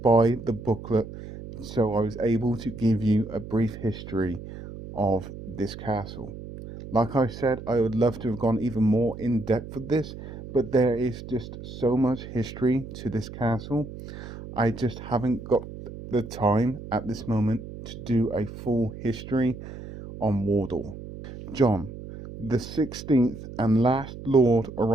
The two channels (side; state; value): right; noise; hum, 12 dB below the sound